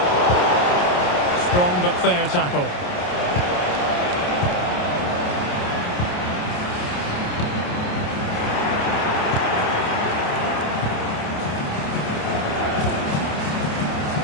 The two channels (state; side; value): late; right; 28 ms